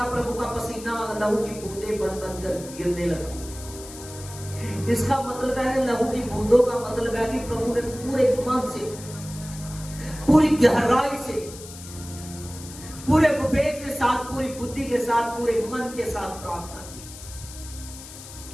प्रभु का पसीना लहू की बूंदें बन बनकर गिरने लगा। इसका मतलब है, लहू की बूंदों का मतलब है कि प्रभु ने पूरे मन से, पूरी गहराई से, पूरे विवेक के साथ, पूरी बुद्धि के साथ, पूरे मन के साथ प्रार्थना की।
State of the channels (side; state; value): left; noise; hiss, 15 dB below the sound